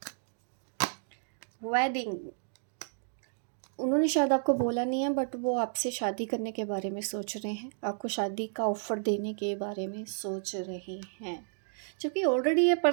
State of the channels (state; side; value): silent; left; digital silence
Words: वेडिंग, उन्होंने शायद आपको बोला नहीं है बट वो आपसे शादी करने के बारे में सोच रहे हैं, आपको शादी का ऑफ़र देने के बारे में सोच रहे हैं। क्योंकि ऑलरेडी ये